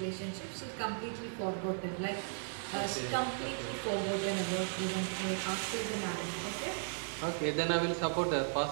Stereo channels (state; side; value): silent; left; 54 dB below the other